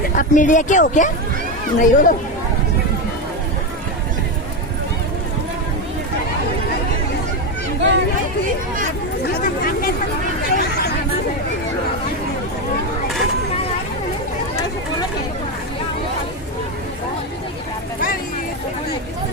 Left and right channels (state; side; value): normal; both; correlation 0.11